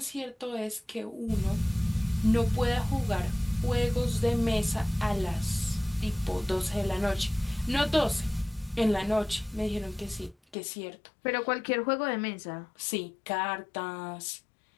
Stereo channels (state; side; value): drops out; right; at 10.6 s